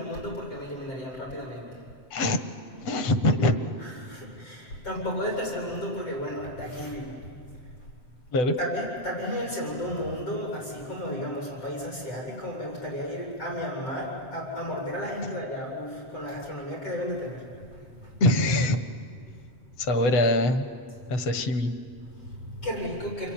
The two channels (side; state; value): right; late; 8.0 ms